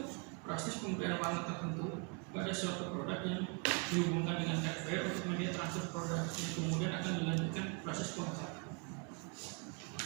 proses pemberian warna tertentu pada suatu produk yang dihubungkan dengan hardware untuk media transfer produk yang kemudian akan dilanjutkan proses pengecatan.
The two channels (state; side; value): quieter; left; 35.9 dB